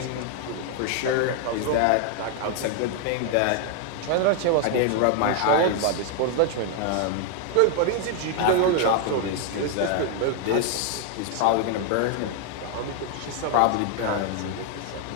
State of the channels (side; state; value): both; different; correlation 0.00